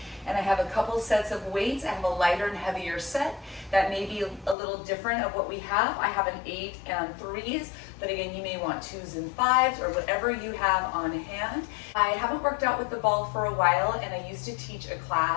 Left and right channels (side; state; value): right; drops out; at 4.5 s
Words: And I have a couple sets of weights. I have a lighter and heavier set that may be a little different of what we have. I have an 8 and 3s, but again, you may want 2s and 5s or whatever you have on hand. I haven't worked out with the ball for a while, and I used to teach a